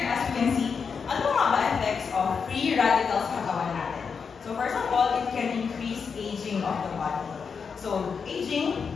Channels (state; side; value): quieter; right; 5.9 dB